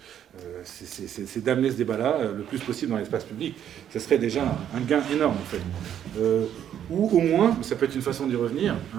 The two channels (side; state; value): left; quieter; 9.9 dB